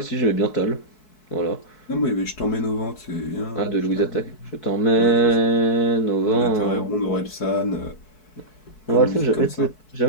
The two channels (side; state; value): right; late; 4.6 ms